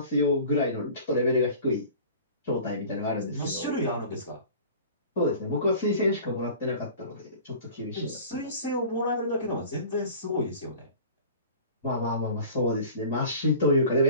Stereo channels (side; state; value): both; inverted; correlation -0.42